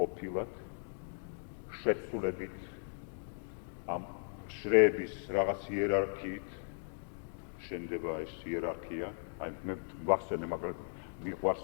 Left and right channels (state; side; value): silent; right; digital silence